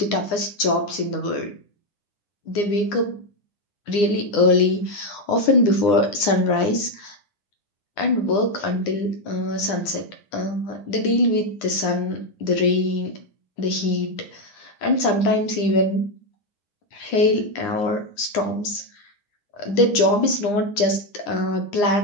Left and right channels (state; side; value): late; right; 9.8 ms